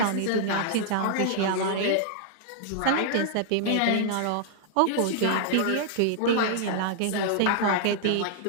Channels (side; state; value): both; different; correlation -0.01